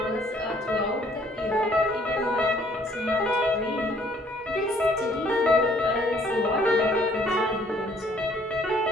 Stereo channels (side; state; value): both; normal; correlation 0.62